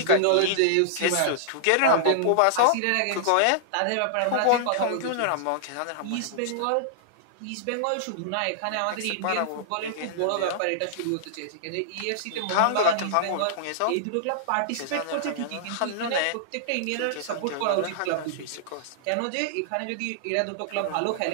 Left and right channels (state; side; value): different; both; correlation -0.01